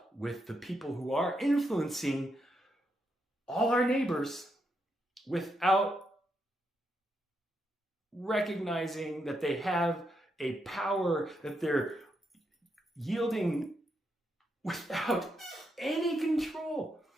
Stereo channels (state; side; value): normal; both; correlation 0.81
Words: with the people who are influencing all our neighbors without recognizing that they have a power that they're yielding without any control.